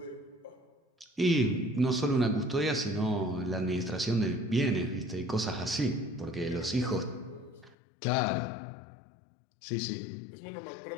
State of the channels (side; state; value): right; drops out; at 7.8 s